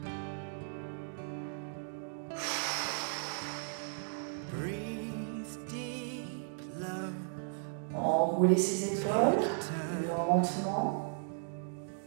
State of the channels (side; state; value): left; silent; digital silence